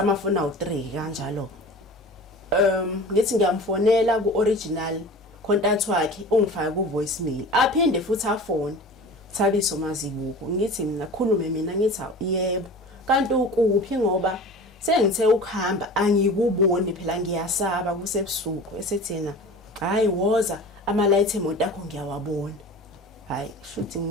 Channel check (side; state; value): both; normal; correlation 0.37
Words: awu3 kanjalo ngithi ngiyamfonela ku original contact wakhe ungifaka ku voicemail aphinde futhi afone Thabiso Mazibuko ngithi mina khulume mina ngithi yebo kanti ukuphi ngoba sengithe ukuhamba angikuboni phela ngiyasaba kusebusuku esethena hayi woza ama light emoto akho ngiyawabona hayi shuthi